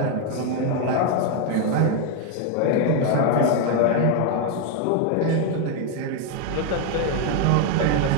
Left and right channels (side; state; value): both; different; correlation 0.01